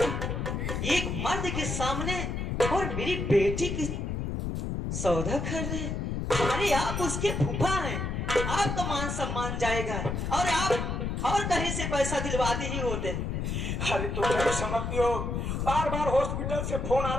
एक मर्द के सामने और मेरी बेटी की सौदा कर रहे हैं। अरे आप उसके फूफा हैं, आपका मान सम्मान जाएगा और आप और कहीं से पैसा दिलवाते ही होते। अरे तो नहीं समझती हो, बार बार हॉस्पिटल से फोन आ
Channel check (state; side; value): noise; left; rumble, 2 dB below the sound